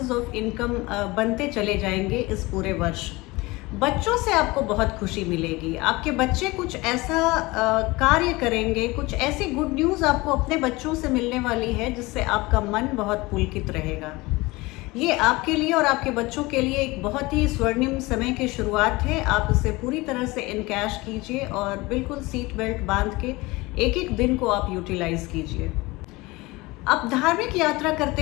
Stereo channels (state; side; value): quieter; right; 22.2 dB